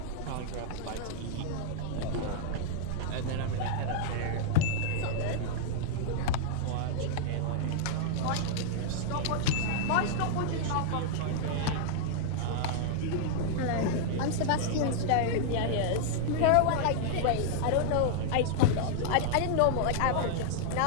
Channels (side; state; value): both; different; correlation -0.01